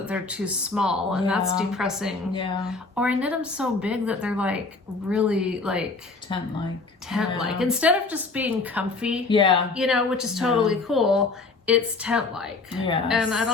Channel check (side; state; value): right; quieter; 3.8 dB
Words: they're too small, and that's Yeah. depressing. Yeah. Or I knit them so big that they're like really like Tent-like. tent-like. Yeah. Instead of just being comfy, Yeah. you know, which is totally cool, it's tent-like. Yes. And